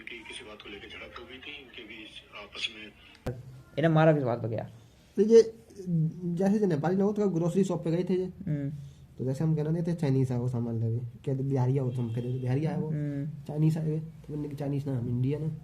किसी बात को लेकर झड़प हो गई थी इनके बीच आपस में। इन्हें मारा किस बात पे गया? तो ये जैसे जो नेपाली लोग तो ग्रोसरी शॉप पे गए थे ये, हम्म। तो जैसे हम कहना नहीं थे चाइनीज है वो सामान लगे, कहते बिहारी हो, तो हम कहते बिहारी आया वो, चाइनीज आए, तो मैंने कहा चाइनीज ना हम इंडियन है,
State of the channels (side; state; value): both; identical; correlation 1.00